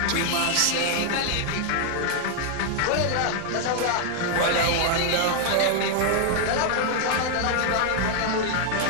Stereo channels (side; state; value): both; different; correlation 0.00